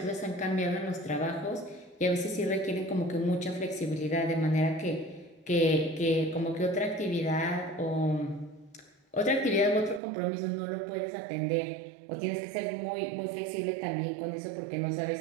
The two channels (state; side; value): drops out; left; at 10.0 s